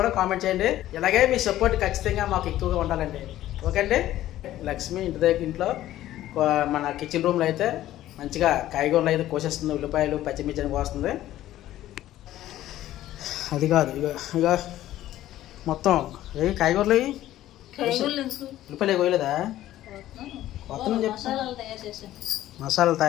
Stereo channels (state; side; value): quieter; right; 13.8 dB